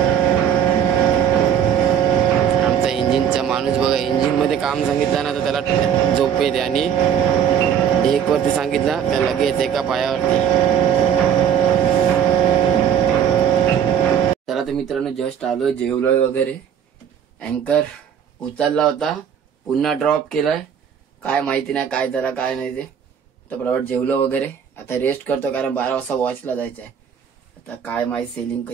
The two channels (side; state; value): left; quieter; 8.5 dB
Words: आमचा इंजिनचा माणूस बघा, इंजिन मध्ये काम सांगितलं ना तर त्याला झोप येते, आणि एक वरती सांगितला तर लगेच एका पायावरती. चला तर मित्रांनो, जस्ट आलोय, जेवलोय वगैरे. अँकर उचलला होता, पुन्हा ड्रॉप केलाय. काय माहिती नाही काय झाला काय नाही ते. तर बरोबर जेवलो वगैरे, आता रेस्ट करतो, कारण 12 वाजता वॉचला जायचं आहे. आता काय माहिती सेलिंग